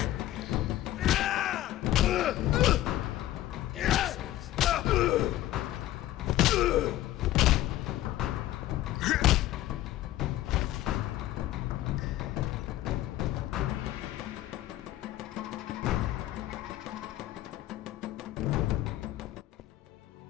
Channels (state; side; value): quieter; right; 14.5 dB